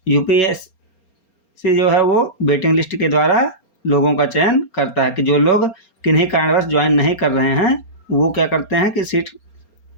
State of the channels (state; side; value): late; right; 4.3 ms